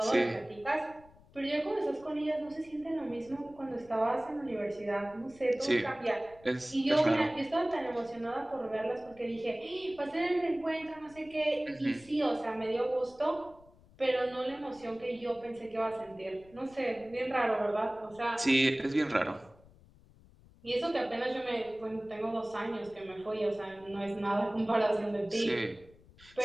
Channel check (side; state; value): left; noise; rumble, 25 dB below the sound